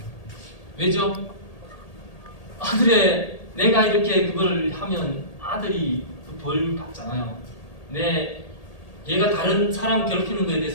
왜죠? 아들의 내가 이렇게 그걸 하면 아들이 그 벌 받잖아요. 얘가 다른 사람 괴롭히는 거에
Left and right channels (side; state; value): right; late; 1.8 ms